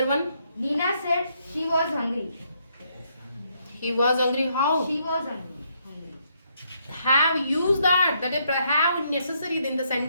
one? Nina said she was hungry. He was hungry. How? She was hungry. Have used that. That is have necessary in the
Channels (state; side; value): inverted; both; correlation -0.74